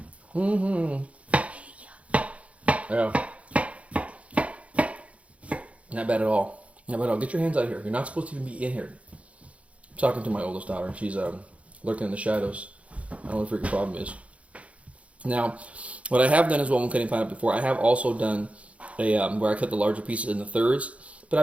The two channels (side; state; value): left; late; 0.064 ms